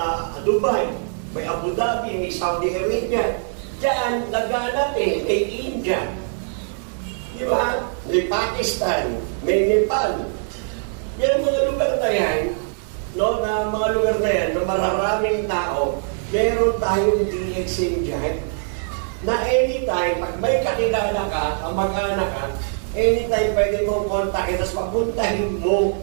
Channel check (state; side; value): silent; left; 64 dB below the other